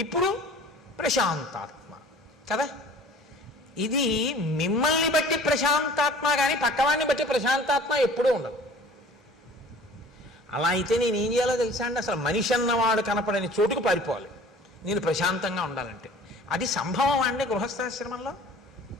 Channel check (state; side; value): normal; both; correlation 0.47